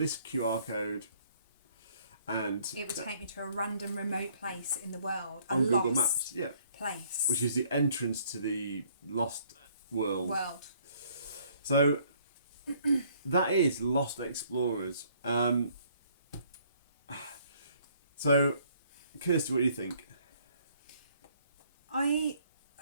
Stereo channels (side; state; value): both; inverted; correlation -0.62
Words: QR code, and it would take me to a random remote place in the world. A on Google lost Maps, yeah, place. which is the entrance to the lost world. World. So that is Lost Explorers. So, Kirsty, what do you think? I